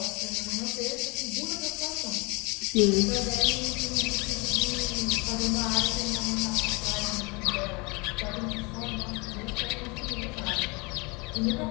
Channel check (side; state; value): right; quieter; 27.9 dB